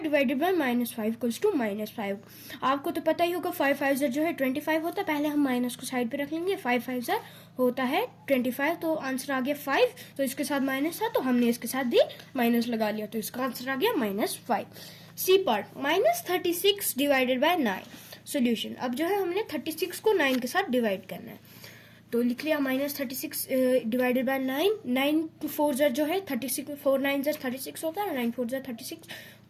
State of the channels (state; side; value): identical; both; correlation 1.00